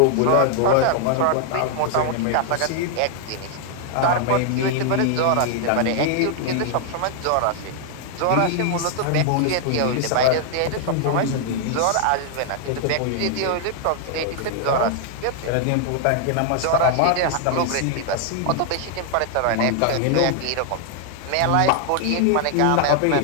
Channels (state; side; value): different; both; correlation 0.00